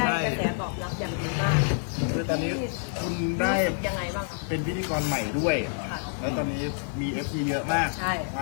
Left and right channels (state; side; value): silent; right; digital silence